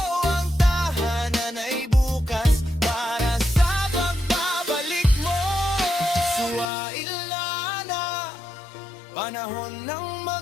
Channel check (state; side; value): drops out; right; at 6.7 s